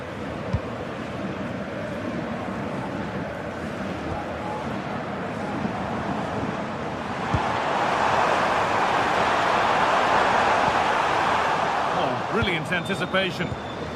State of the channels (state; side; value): identical; both; correlation 1.00